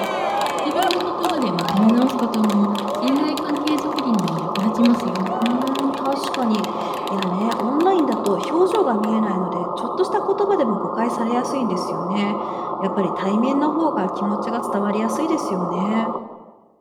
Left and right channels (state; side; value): identical; both; correlation 1.00